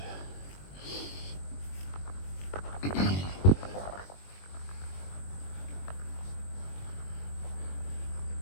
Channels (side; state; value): right; late; 21 ms